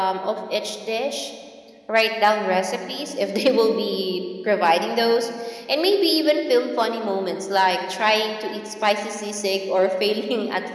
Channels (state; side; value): identical; both; correlation 1.00